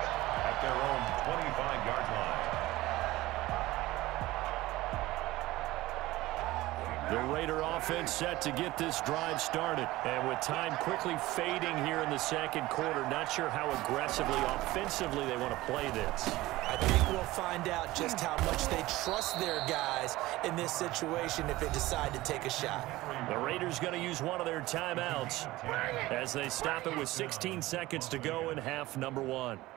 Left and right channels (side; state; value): left; quieter; 18.1 dB